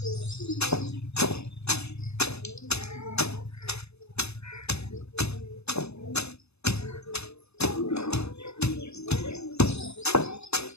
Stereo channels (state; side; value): late; right; 0.80 ms